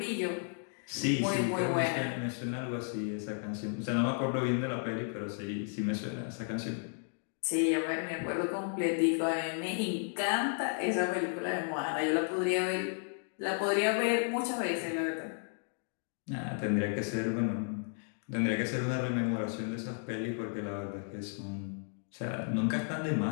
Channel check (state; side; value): silent; right; 55 dB below the other